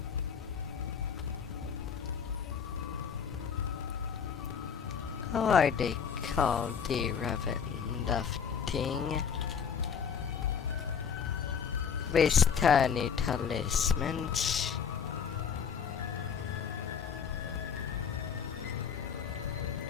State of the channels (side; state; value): right; quieter; 7.0 dB